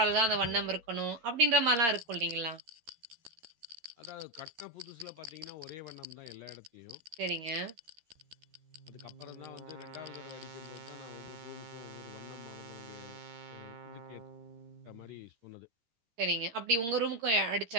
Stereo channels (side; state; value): left; late; 13 ms